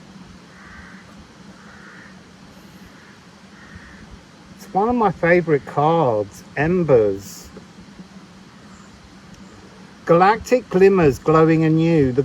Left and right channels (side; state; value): both; identical; correlation 1.00